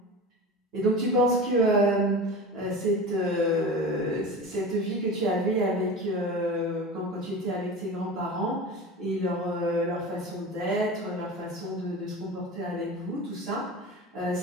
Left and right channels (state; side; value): normal; both; correlation 0.31